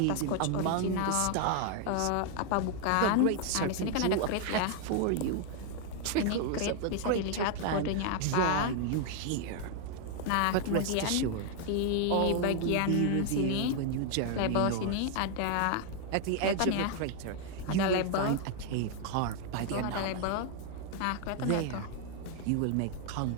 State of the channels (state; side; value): different; both; correlation 0.00